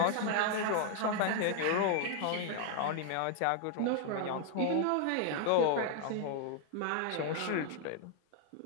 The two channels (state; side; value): different; both; correlation 0.00